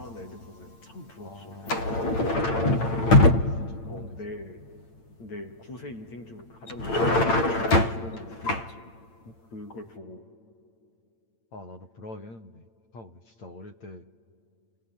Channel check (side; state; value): right; late; 8.9 ms